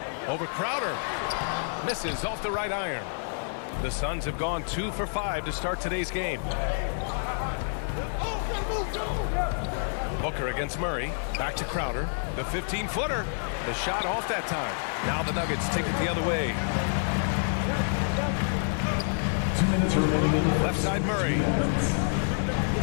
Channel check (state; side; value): silent; right; digital silence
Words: Over Crowder. Misses off the right iron. The Suns have gone 2 for 5 to start today's game. Booker against Murray. Back to Crowder. The 15-footer. The shot off that time. Now the Nuggets take it the other way. 2 minutes remaining in the left side Murray.